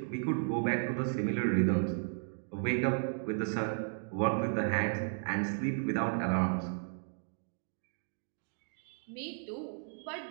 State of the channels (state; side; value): silent; left; 55 dB below the other